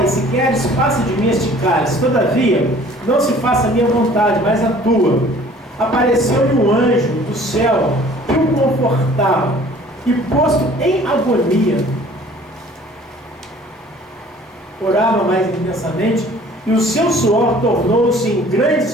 se queres, passa de mim este cálice, todavia, não se faça a minha vontade, mas a tua. Apareceu-lhe um anjo do céu, que o confortava, e posto em agonia, orava mais intensamente, e o seu suor tornou-se em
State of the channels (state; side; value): normal; both; correlation 0.51